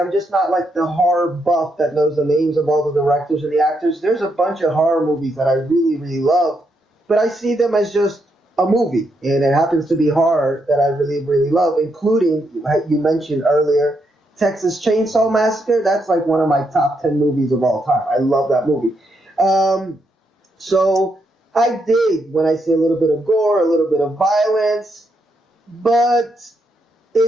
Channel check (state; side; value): normal; both; correlation 0.79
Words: just not like the horror buff that knows the names of all the directors and the actors. There's a bunch of horror movies that I really, really love, but I see them as just a movie, and it happens to be horror that I really, really love, including, you mentioned earlier, Texas Chainsaw Massacre. That's like one of my top 10 movies of all time. I love that movie. So I dig when I see a little bit of gore, a little bit of violence, but